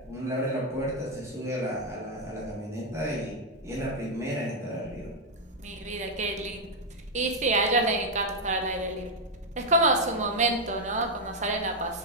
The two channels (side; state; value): both; normal; correlation 0.00